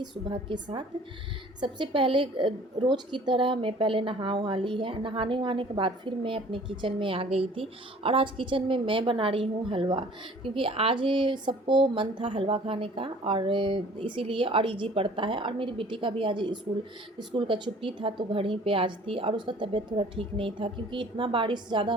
सुबह के साथ। सबसे पहले रोज़ की तरह मैं पहले नहा वहा ली है। नहाने वहाने के बाद फिर मैं अपने किचन में आ गई थी और आज किचन में मैं बना रही हूँ हलवा, क्योंकि आज सबको मन था हलवा खाने का और इसीलिए और ईजी पड़ता है। और मेरी बेटी का भी आज स्कूल का छुट्टी था तो घर ही पे आज थी और उसका तबीयत थोड़ा ठीक नहीं था, क्योंकि इतना बारिश ज़्यादा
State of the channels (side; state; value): both; normal; correlation 0.51